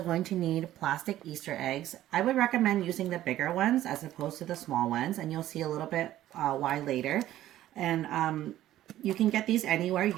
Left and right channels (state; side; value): quieter; left; 13.6 dB